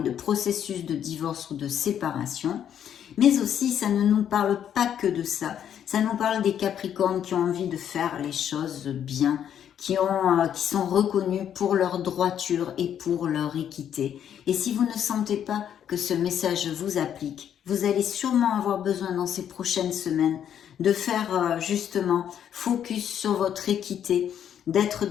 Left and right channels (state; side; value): quieter; right; 9.4 dB